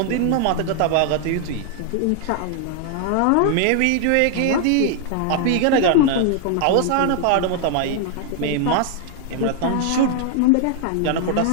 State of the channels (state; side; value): different; both; correlation 0.00